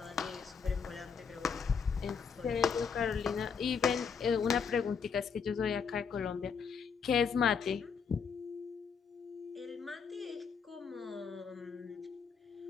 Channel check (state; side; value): quieter; right; 6.2 dB